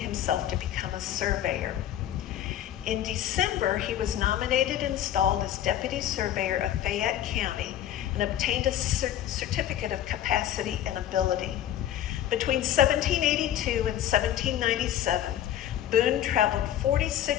to become a surveyor. In December, he was nominated and installed as deputy surveyor of Fayette County and obtained a certificate of capacity and ability. Between 1782 and 1797, Boone traveled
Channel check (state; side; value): quieter; right; 11.6 dB